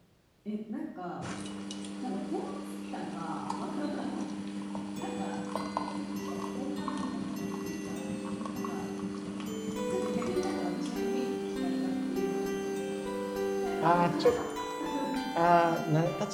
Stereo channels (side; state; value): both; identical; correlation 1.00